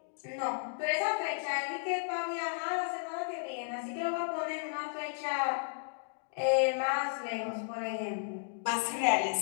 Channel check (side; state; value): right; silent; digital silence